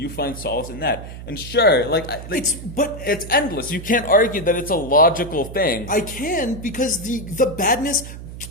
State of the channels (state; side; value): noise; right; hum, 12 dB below the sound